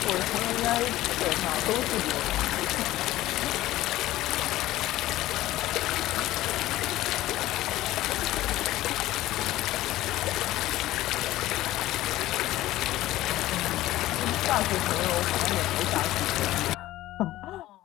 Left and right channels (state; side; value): quieter; right; 15.7 dB